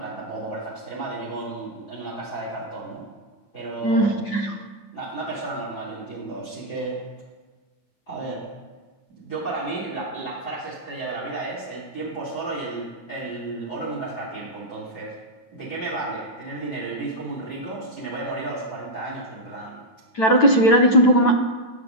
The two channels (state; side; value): late; right; 9.1 ms